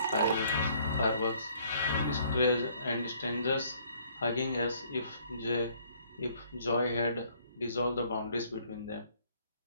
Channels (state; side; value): inverted; both; correlation -0.62